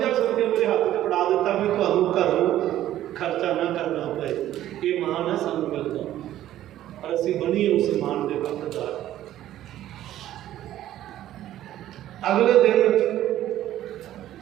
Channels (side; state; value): left; quieter; 13.0 dB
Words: ਰੁਪਇਆ ਮੇਰੇ ਹੱਥ 'ਚ ਫੜਾ ਦਿੱਤਾ ਵੀ ਤੁਹਾਨੂੰ ਘਰ ਨੂੰ ਖਰਚਾ ਨਾ ਕਰਨਾ ਪਏ। ਇਹ ਮਾਣ ਹੈ ਸਾਨੂੰ ਮਿਲਦਾ, ਪਰ ਅਸੀਂ ਬਣੀਏ ਉਸ ਮਾਣ ਦੇ ਹੱਕਦਾਰ। ਅਗਲੇ ਦਿਨ